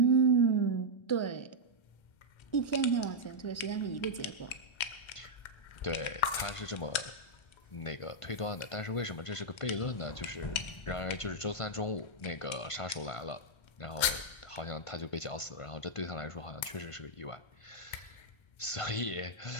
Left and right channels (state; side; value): late; right; 1.3 ms